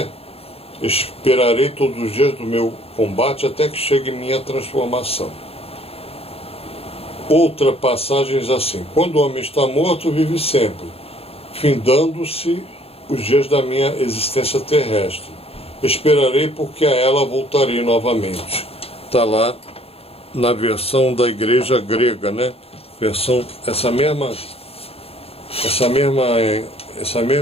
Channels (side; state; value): right; late; 0.28 ms